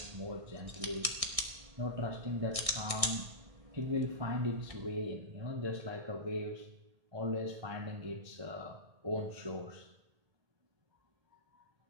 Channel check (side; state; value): left; late; 1.6 ms